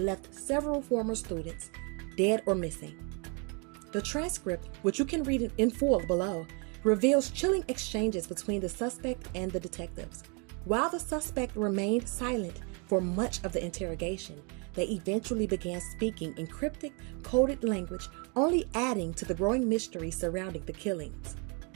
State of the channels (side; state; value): left; quieter; 34.1 dB